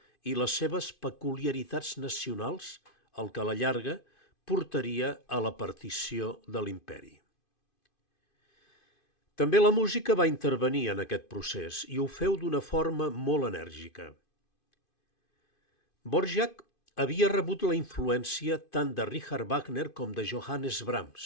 i les seves peculiaritats nacionals, el que a la llarga portaria a la partició de l'imperi. També la música va intervenir en aquest procés i ho feu d'una forma molt enèrgica. Dvořák havia rebut la influència tant de Richard Wagner com de Johannes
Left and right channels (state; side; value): late; right; 2.5 ms